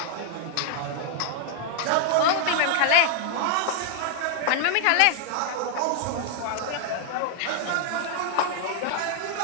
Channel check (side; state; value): both; different; correlation 0.00